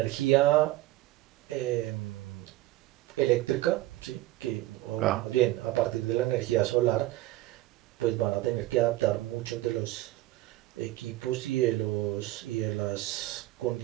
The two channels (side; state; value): left; quieter; 17.0 dB